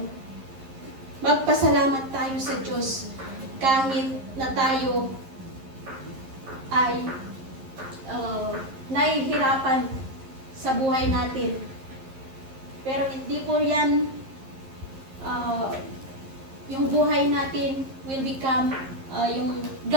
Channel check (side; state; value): left; late; 11 ms